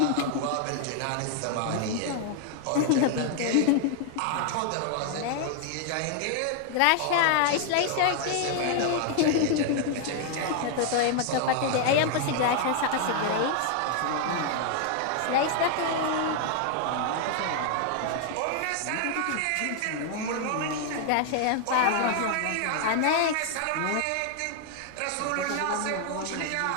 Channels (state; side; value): different; both; correlation 0.00